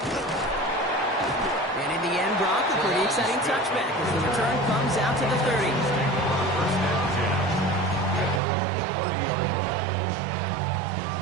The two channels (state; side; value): drops out; left; at 8.4 s